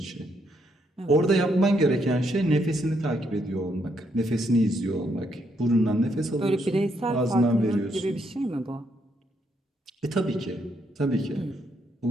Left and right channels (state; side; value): normal; both; correlation 0.75